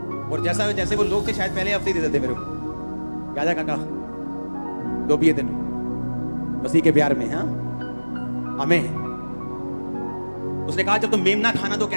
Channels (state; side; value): inverted; both; correlation -1.00